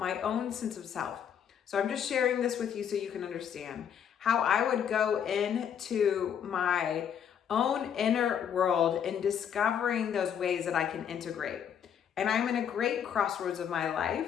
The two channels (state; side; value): quieter; right; 8.5 dB